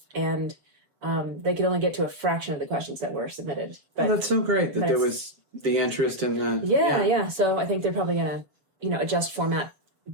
And they could only get to a fraction of the questions that were submitted. But that's so great that there was the interest in the... Yeah. So I think they're probably going to, adjust format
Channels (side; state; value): left; late; 7.3 ms